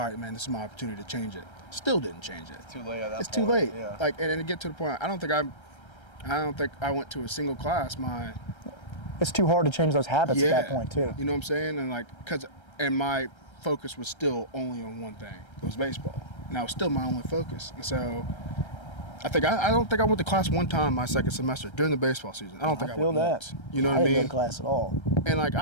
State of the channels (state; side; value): late; right; 1.3 ms